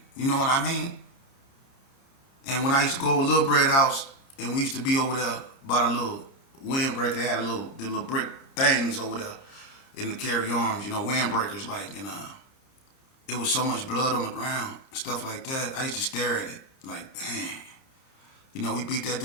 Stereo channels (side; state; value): right; late; 29 ms